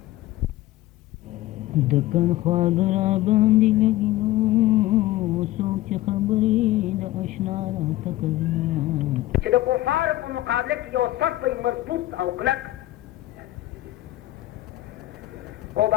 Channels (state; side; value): quieter; right; 16.1 dB